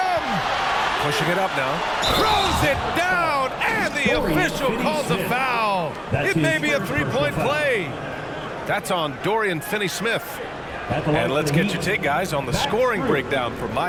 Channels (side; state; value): both; identical; correlation 1.00